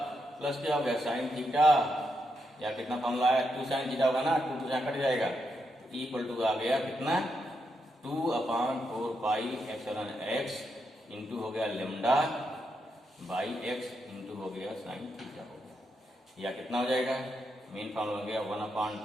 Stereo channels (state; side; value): normal; both; correlation 0.82